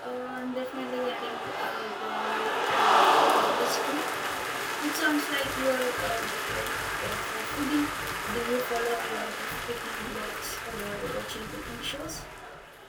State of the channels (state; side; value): identical; both; correlation 1.00